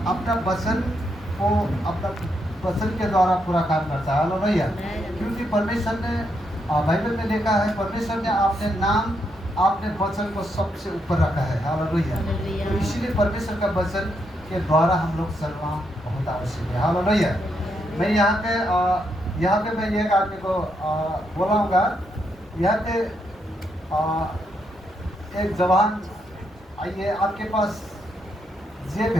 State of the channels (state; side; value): normal; both; correlation 0.79